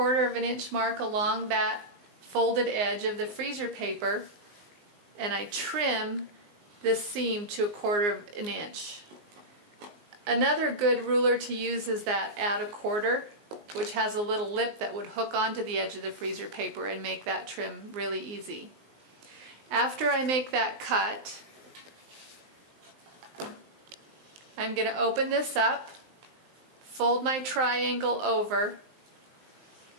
of an inch mark along that folded edge of the freezer paper, and I trim this seam to 1/4 of an inch. Another good ruler to use is that Add a Quarter, which has a little lip that would hook onto the edge of the freezer paper and make that trim really easy. After I make that cut, I'm going to open this up, fold my triangle over,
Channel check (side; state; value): left; late; 19 ms